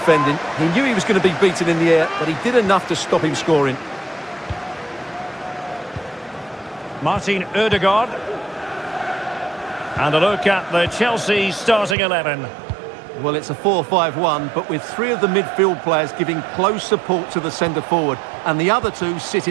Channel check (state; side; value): drops out; left; at 12.0 s